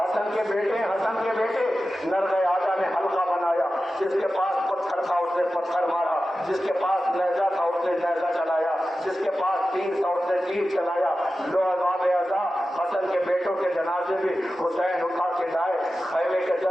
حسن کے بیٹے ہیں, حسن کے بیٹے. نرغے آجا نے حلقہ بنایا, جس کے پاس پتھر تھا اس نے پتھر مارا, جس کے پاس نیزہ تھا اس نے نیزہ چلایا, جس کے پاس تیر تھا اس نے تیر چلایا. لو عذاب اعضا حسن کے بیٹوں کے جنازے بھی حسین اٹھا کے لائے. خیمے کے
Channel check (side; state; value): both; normal; correlation 0.93